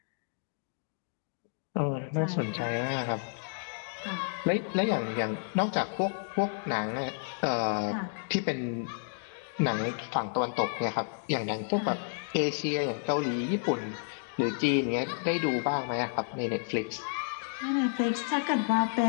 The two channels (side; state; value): right; silent; digital silence